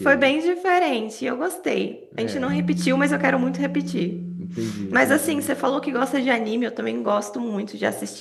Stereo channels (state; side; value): identical; both; correlation 1.00